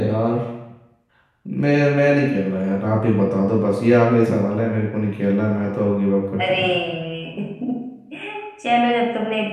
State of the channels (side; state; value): both; identical; correlation 1.00